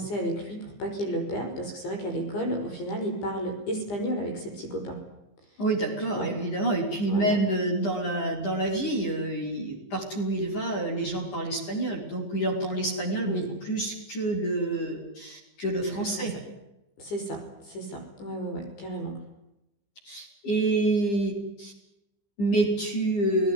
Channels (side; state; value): right; late; 15 ms